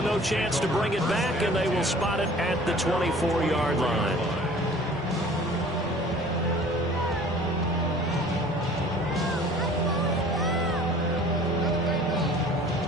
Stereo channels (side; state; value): both; normal; correlation 0.49